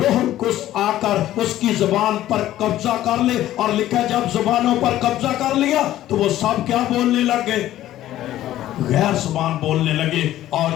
القدس آ کر اس کی زبان پر قبضہ کر لے، اور لکھا جب زبانوں پر قبضہ کر لیا تو وہ سب کیا بولنے لگے؟ غیر زبان بولنے لگے۔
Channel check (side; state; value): right; quieter; 13.6 dB